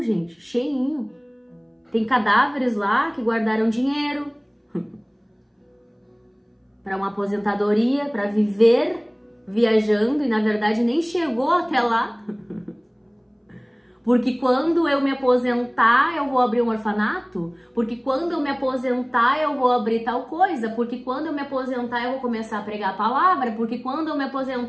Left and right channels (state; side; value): identical; both; correlation 1.00